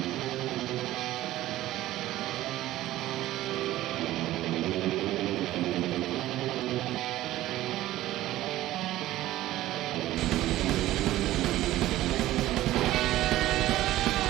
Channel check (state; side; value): quieter; left; 15.3 dB